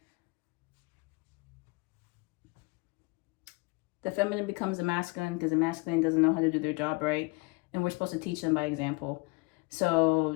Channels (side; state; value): right; quieter; 27.7 dB